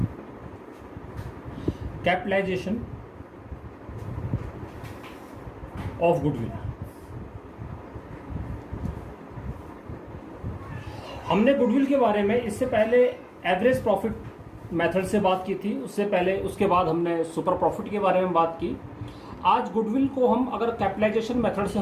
Capitalization of goodwill. हमने गुडविल के बारे में इससे पहले एवरेज प्रॉफिट मेथड से बात की थी, उससे पहले उसके बाद हमने सुपर प्रॉफिट के बारे में बात की। आज गुडविल को हम अगर कैपिटलाइजेशन मेथड से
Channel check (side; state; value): both; identical; correlation 1.00